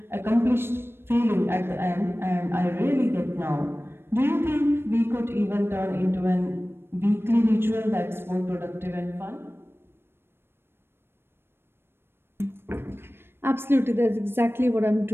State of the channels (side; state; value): left; late; 0.11 ms